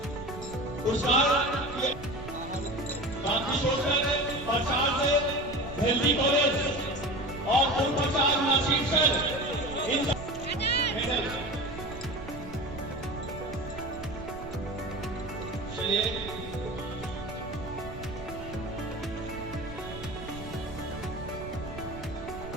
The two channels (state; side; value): noise; right; rumble, 12 dB below the sound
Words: गांधी सोशल प्रसाद से हेल्दी कॉलेज और पूर्व प्रसाद नासिर सर इन चलिए